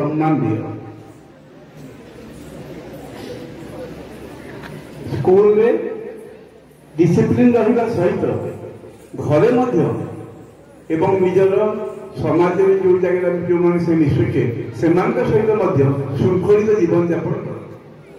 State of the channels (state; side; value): identical; both; correlation 1.00